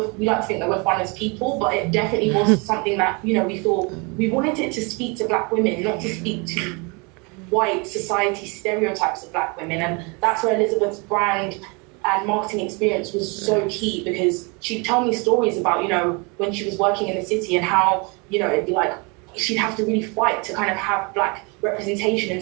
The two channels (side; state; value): left; quieter; 30.6 dB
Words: we like to think that we're fun as people, but it definitely was something that, we thought we wanted it to speak to black women, not to speak to white society stereotypes of black women. And that's where Elizabeth's brand and marketing experience was so key, because she'd tell me stories about, when she was working in the city, and how, it'd be like, she'd have to really fight to kind of have black representation in